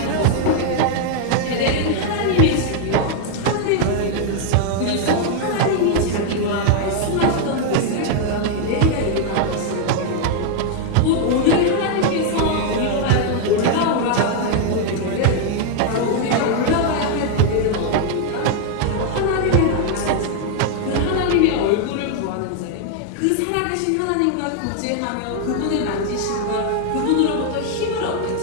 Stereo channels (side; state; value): both; different; correlation 0.00